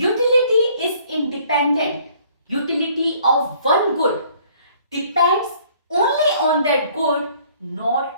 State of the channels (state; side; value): inverted; both; correlation -0.59